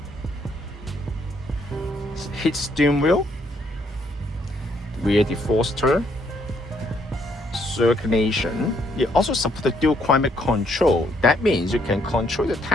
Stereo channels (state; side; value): normal; both; correlation 0.70